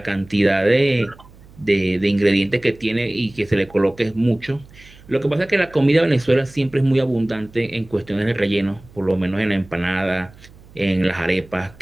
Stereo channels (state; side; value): noise; right; hum, 23 dB below the sound